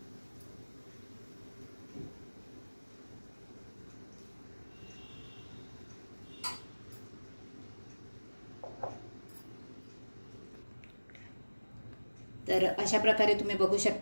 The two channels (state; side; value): inverted; both; correlation -1.00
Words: तर अशा प्रकारे तुम्ही बघू